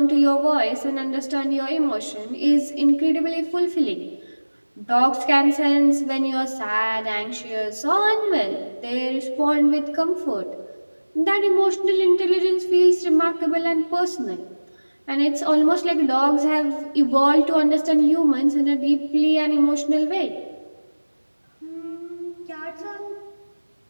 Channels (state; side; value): inverted; both; correlation -1.00